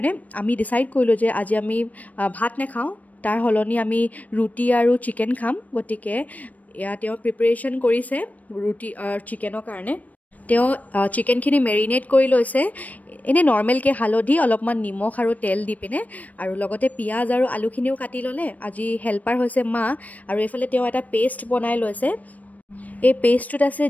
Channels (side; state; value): right; late; 0.073 ms